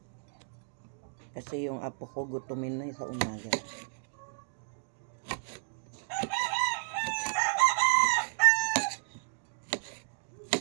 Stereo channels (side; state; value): left; silent; digital silence